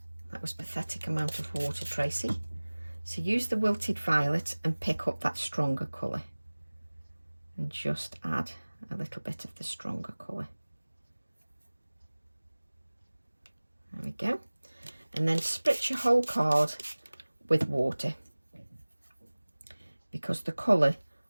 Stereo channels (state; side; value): inverted; both; correlation -1.00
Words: That was pathetic amount of water, Tracy. So use the wilted violet and pick up that stronger colour. And just add a little bit of the stronger colour. There we go. And then spritz your whole card with water, because the colour